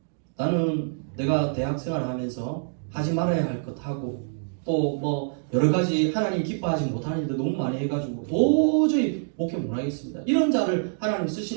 나는 내가 대학 생활을 하면서 하지 말아야 할 것 하고 또 뭐 여러 가지 하나님 기뻐하지 못하는 일도 너무 많이 해가지고 도저히 목회 못하겠습니다. 이런 자를 하나님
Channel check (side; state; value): left; silent; digital silence